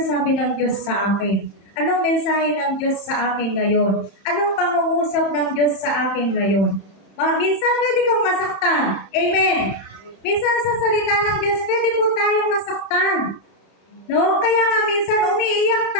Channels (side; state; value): right; late; 31 ms